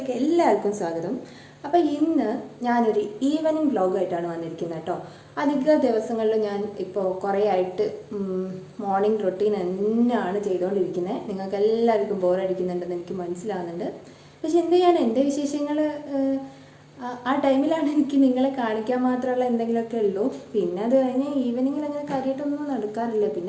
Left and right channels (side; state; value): both; identical; correlation 1.00